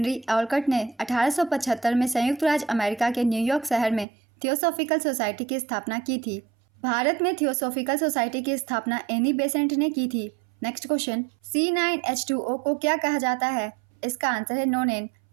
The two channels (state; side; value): drops out; left; at 4.0 s